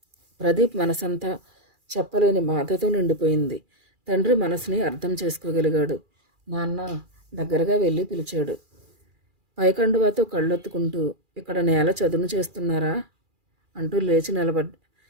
ప్రదీప్ మనసంతా చెప్పలేని బాధతో నిండిపోయింది. తండ్రి మనసుని అర్థం చేసుకోగలిగాడు. నాన్న దగ్గరగా వెళ్ళి పిలిచాడు. పైకండువాతో కళ్ళొత్తుకుంటూ, ఇక్కడ నేల చదును చేస్తున్నారా అంటూ లేచి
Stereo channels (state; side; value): late; left; 2.4 ms